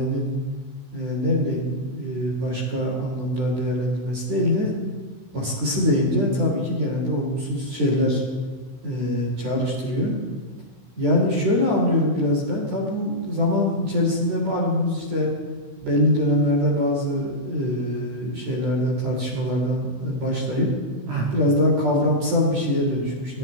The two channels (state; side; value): late; left; 16 ms